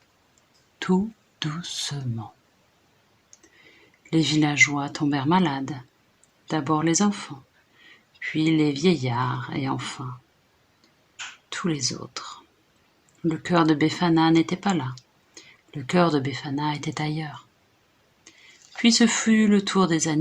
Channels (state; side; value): identical; both; correlation 1.00